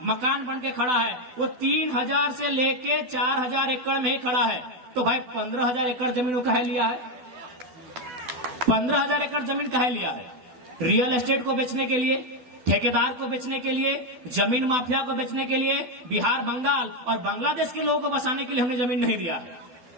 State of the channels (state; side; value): late; left; 12 ms